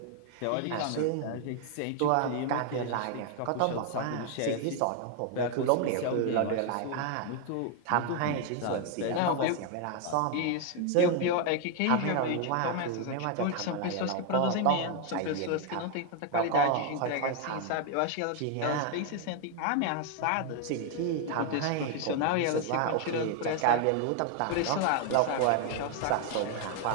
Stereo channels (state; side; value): different; both; correlation 0.00